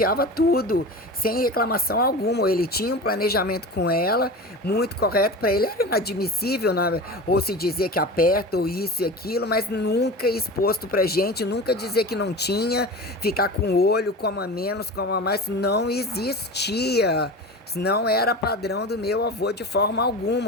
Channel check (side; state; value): both; normal; correlation 0.31